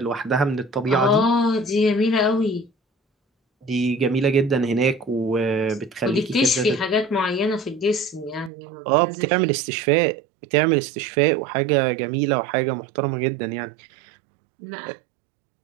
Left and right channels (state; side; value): drops out; left; at 8.5 s